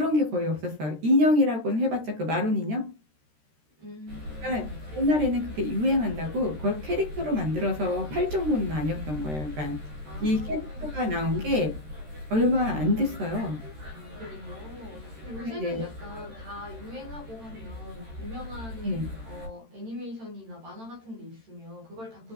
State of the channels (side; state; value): left; late; 13 ms